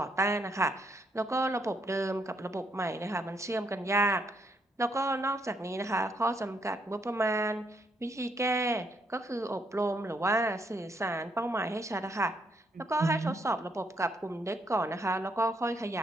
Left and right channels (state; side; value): normal; both; correlation 0.74